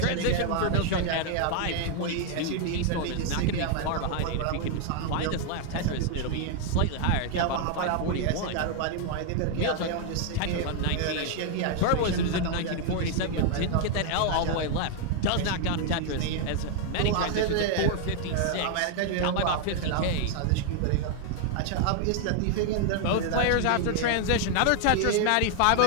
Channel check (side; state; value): both; different; correlation 0.00